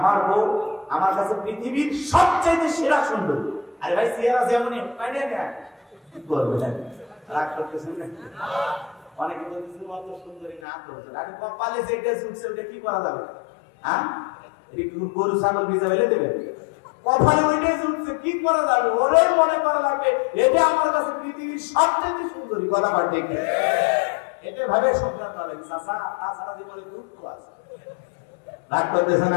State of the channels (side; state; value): right; drops out; at 10.6 s